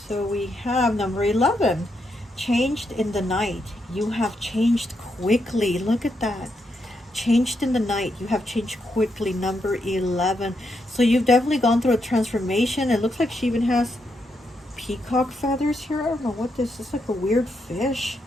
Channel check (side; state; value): both; normal; correlation 0.81